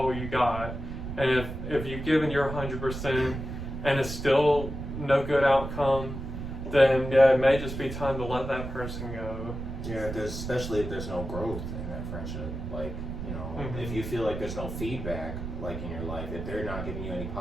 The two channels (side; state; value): right; noise; rumble, 7 dB below the sound